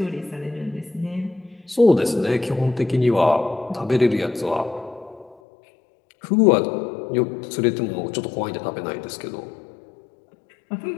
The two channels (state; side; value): drops out; right; at 5.4 s